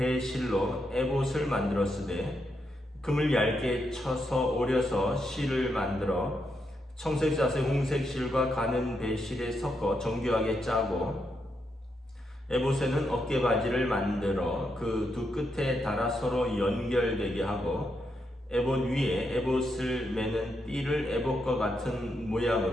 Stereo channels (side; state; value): both; normal; correlation 0.82